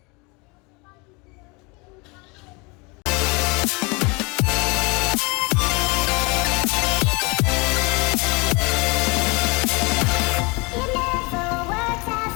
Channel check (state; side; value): quieter; right; 28.2 dB